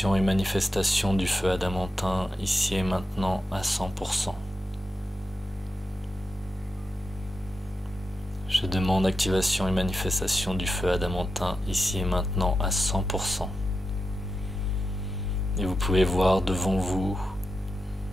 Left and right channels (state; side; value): normal; both; correlation 0.89